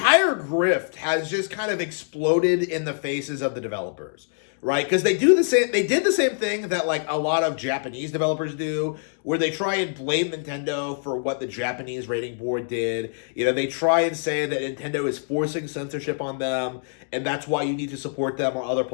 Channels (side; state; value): right; silent; digital silence